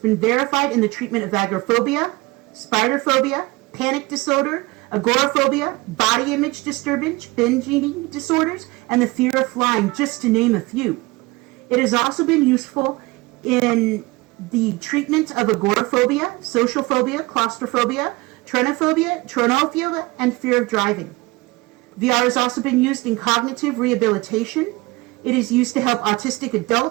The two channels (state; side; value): quieter; left; 22.9 dB